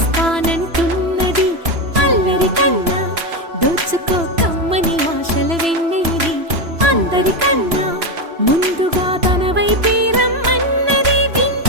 అల్లరి కన్నా దోచుకో కమ్మని ఆశల వెన్నెయిది అందరికన్నా ముందుగా తన వైపే రమ్మన్నది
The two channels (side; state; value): left; late; 3.0 ms